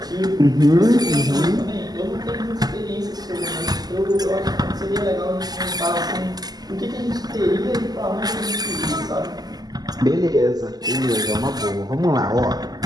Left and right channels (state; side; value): late; left; 0.19 ms